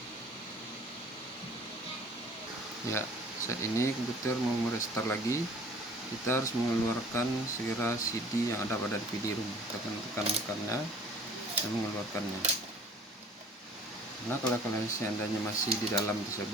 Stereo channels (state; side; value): normal; both; correlation 0.50